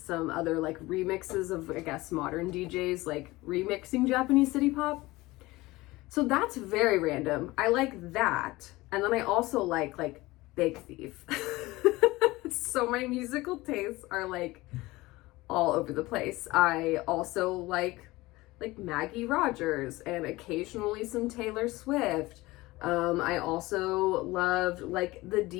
other like remixes of, I guess, modern DJs like remixing Japanese city pop. So that's very random. I like that. And then I also like Big Thief. So my musical tastes are like all over the place. I also like Maggie Rogers and occasionally some Taylor Swift. I also loved like the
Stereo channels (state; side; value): quieter; right; 20.1 dB